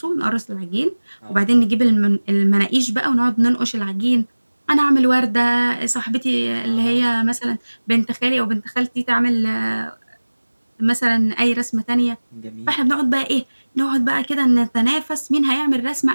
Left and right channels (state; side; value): inverted; both; correlation -1.00